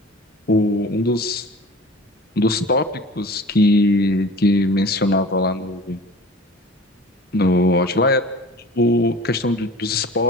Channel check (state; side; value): normal; both; correlation 0.42